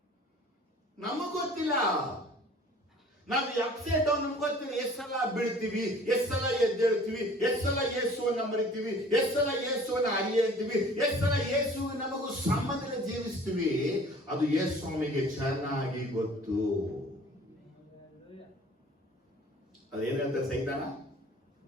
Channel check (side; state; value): both; normal; correlation 0.49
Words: ನಮಗ್ ಗೊತ್ತಿಲ್ಲ, ನಾವು ಅಪ್ಸೆಟ್ ಡೌನ್ ನಮ್ಗೆ ಗೊತ್ತಿಲ್ಲ. ಎಷ್ಟು ಸಲ ಬೀಳ್ತೀವಿ, ಎಷ್ಟು ಸಲ ಎದ್ದೇಳ್ತೀವಿ, ಎಷ್ಟು ಸಲ ಯೇಸುವನ್ನ ಮರಿತೀವಿ, ಎಷ್ಟು ಸಲ ಯೇಸುವನ್ನ ಅರಿಯಂತೀವಿ, ಎಷ್ಟು ಸಲ ಯೇಸು ನಮಗೂ ಸಂಬಂಧದಲ್ಲಿ ಜೀವಿಸ್ತೀವಿ. ಅದು ಯೇಸು ಸ್ವಾಮಿಗೆ ಚೆನ್ನಾಗಿ ಗೊತ್ತು. ಅದೇನ್ ಹೇಳ್ತಾರೆ ಸೈತಾನ?